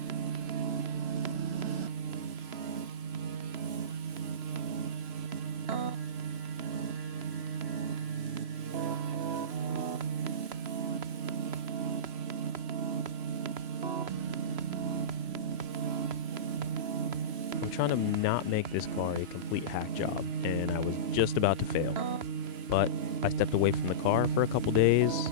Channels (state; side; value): late; left; 3.0 ms